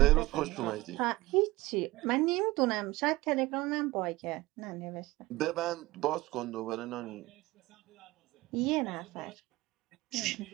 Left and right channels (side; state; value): left; quieter; 19.8 dB